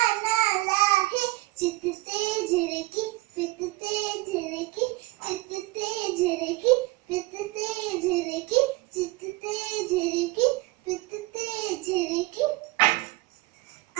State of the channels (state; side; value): quieter; left; 20.6 dB